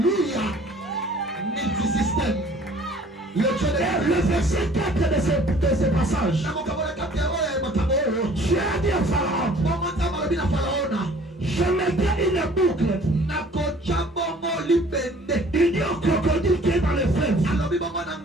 Multisystème. Le verset 4 de ce passage, Dieu a dit à Pharaon, je mettrai une boucle. Il dit au crocodile qui est dans le fleuve,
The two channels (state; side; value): normal; both; correlation 0.53